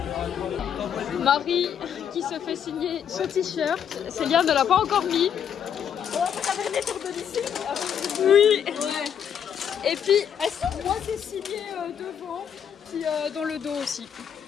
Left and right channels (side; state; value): right; quieter; 8.5 dB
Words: Marie qui se fait signer son t-shirt, Célia ne l'a pas encore mis. Oui. Ouais. Et puis moi c'est signé devant puis dans le dos aussi.